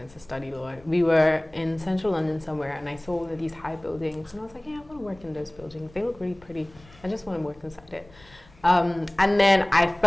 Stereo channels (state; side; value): noise; left; rumble, 26 dB below the sound